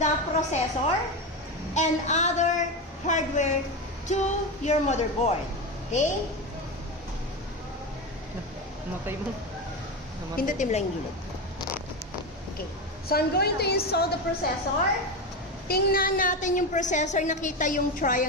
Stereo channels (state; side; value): normal; both; correlation 0.17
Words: the processor and other hardware to your motherboard. Okay? Namatay mo. Pindutin mo lang yung gilid. Okay. So, I'm going to install the processor. Tingnan natin yung processor. Nakita yung